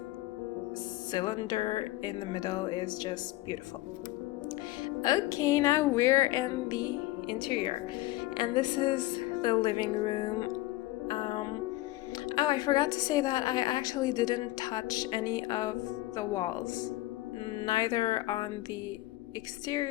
cylinder in the middle is just beautiful. Okay, now we're in the interior, and this is the living room. Oh, I forgot to say that I actually didn't touch any of the walls, neither on the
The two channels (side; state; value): right; quieter; 18.0 dB